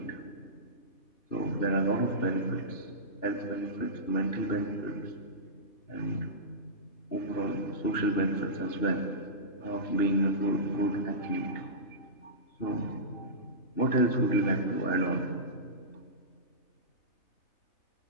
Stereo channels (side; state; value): right; late; 2.8 ms